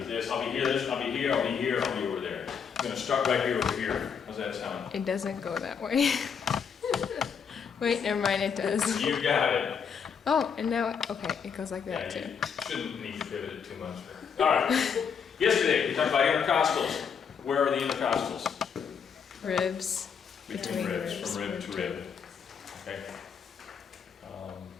I'll be here, this, I'll be here, I'll be here, I'll be over there. I'm gonna start right here over here. How's that sound? It doesn't go that way. Wait, never mind, it does. You got it. Oh, and now, okay, it goes like that Yeah, too. you shouldn't need to pivot it too much. All right. Yesterday, we talked about intercostals. Where are the intercostals? Ribs. Between ribs, ribs. from rib to rib. Okay.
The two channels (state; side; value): quieter; right; 6.8 dB